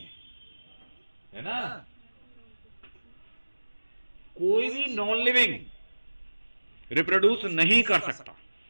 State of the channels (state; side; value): inverted; both; correlation -1.00